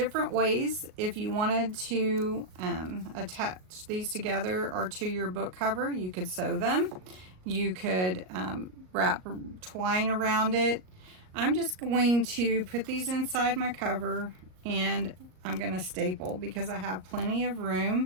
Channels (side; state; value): left; late; 38 ms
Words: ways. If you wanted to attach these together or to your book cover, you could sew them. You could wrap twine around it. I'm just going to put these inside my cover, and I'm going to staple because I have plenty of